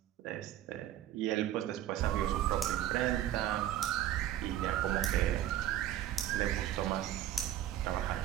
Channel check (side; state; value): left; quieter; 12.1 dB